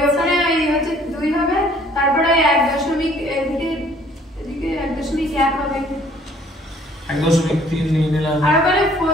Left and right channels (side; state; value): both; normal; correlation 0.58